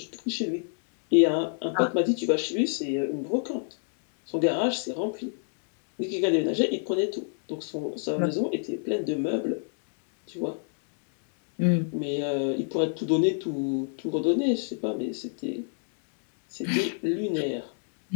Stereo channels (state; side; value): silent; right; digital silence